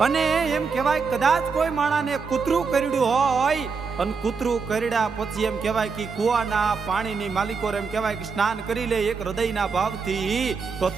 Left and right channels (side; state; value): left; quieter; 5.1 dB